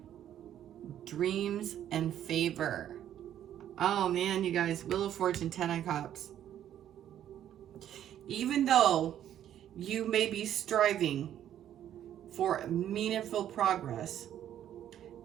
Dreams and favor. Oh man, you guys, Wheel of Fortune, 10 of Cups. Even though you may be striving for meaningful progress,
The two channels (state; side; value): quieter; left; 10.9 dB